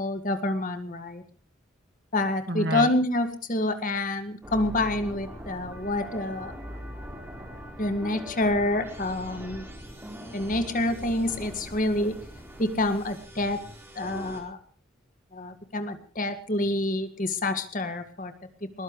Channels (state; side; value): normal; both; correlation 0.38